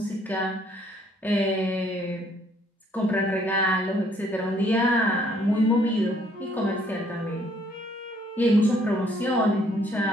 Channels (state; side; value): normal; both; correlation 0.65